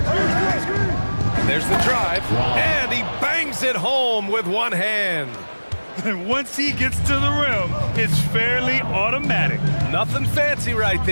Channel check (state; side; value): inverted; both; correlation -1.00